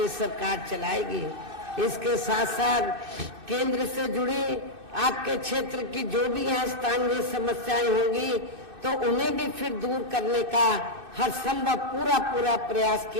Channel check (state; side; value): late; left; 2.6 ms